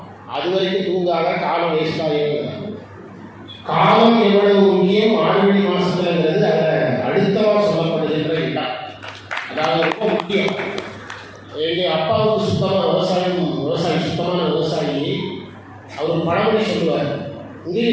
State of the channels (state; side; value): identical; both; correlation 1.00